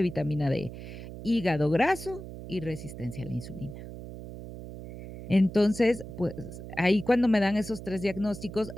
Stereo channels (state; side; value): noise; right; hum, 11 dB below the sound